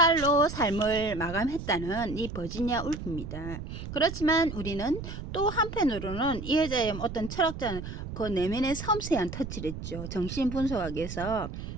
삶을 마감했다는 이 버지니아 울프입니다. 그렇지만 우리는 또 한편으로는 이 여자의 어떤 철학자는 그 내면의 섬세한 터치를 했죠. 정신분석학에서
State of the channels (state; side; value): noise; right; rumble, 8 dB below the sound